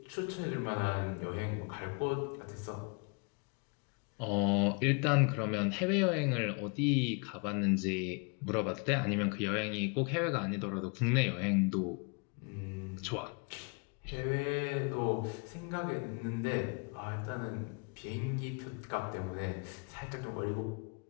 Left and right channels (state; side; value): quieter; right; 34.5 dB